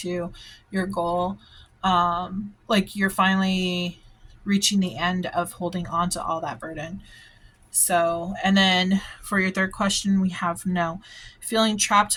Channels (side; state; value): both; identical; correlation 1.00